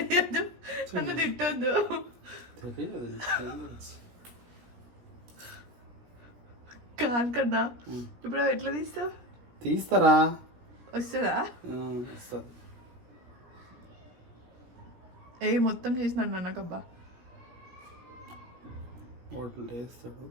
నన్ను తిట్టొద్దు. కాదు కన్నా, ఇప్పుడు అవి ఎట్లా తీస్తావు? తీస్తారా? వస్తుందా? వస్తుంది. మొత్తం చేసినాడు నాన్నకబ్బా. హోటల్ వేస్తాడు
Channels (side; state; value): left; late; 16 ms